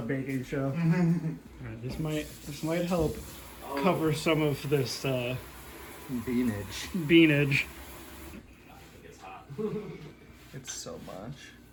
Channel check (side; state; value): both; identical; correlation 1.00